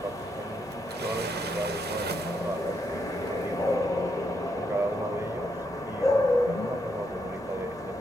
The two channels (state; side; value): normal; both; correlation 0.79